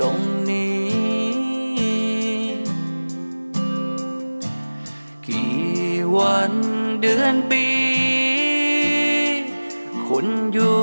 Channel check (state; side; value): inverted; both; correlation -1.00